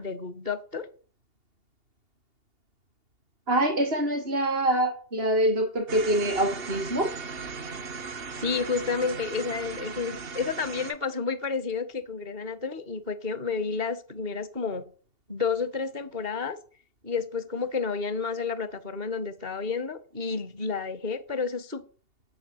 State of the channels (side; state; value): left; late; 2.8 ms